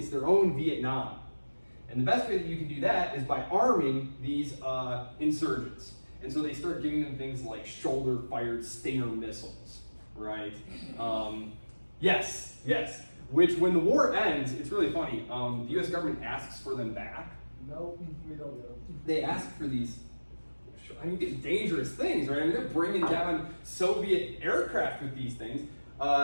their own Vietnam. And the best way that you can do that is by arming these insurgents. And so they start giving them things like shoulder-fired Stinger missiles, right? Yes. Which, when the war ends, it's really funny. The U.S. government asks for them back. No, we don't get them. They ask for these dangerous things, right? I mean, they're bringing down Soviet aircraft with these things.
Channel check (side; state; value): both; inverted; correlation -1.00